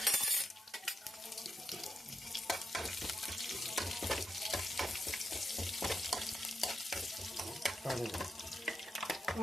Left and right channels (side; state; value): both; normal; correlation 0.85